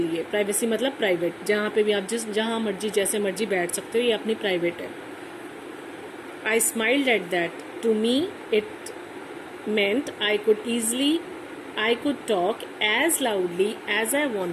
प्राइवेसी मतलब प्राइवेट, जहाँ पे भी आप जहाँ मर्जी जैसे मर्जी बैठ सकते हो, ये अपनी प्राइवेट है. I smiled at that. To me it meant I could talk as loudly as I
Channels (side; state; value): both; identical; correlation 1.00